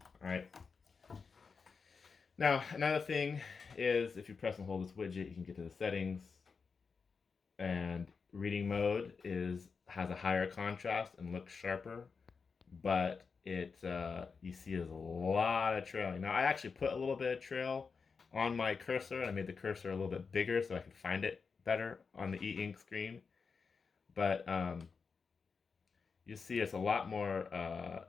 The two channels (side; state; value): right; quieter; 5.2 dB